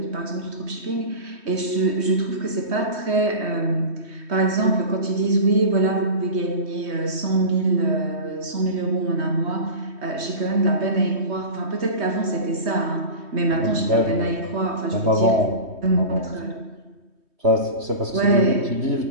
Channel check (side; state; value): left; late; 3.2 ms